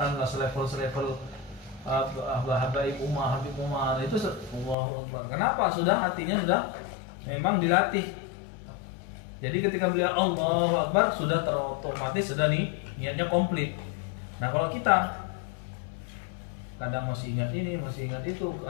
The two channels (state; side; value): drops out; right; at 4.8 s